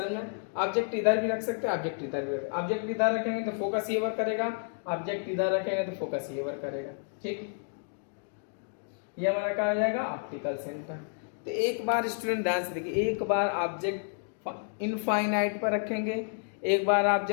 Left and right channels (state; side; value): silent; right; digital silence